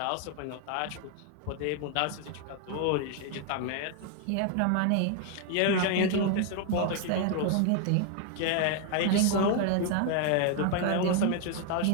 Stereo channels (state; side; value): different; both; correlation 0.00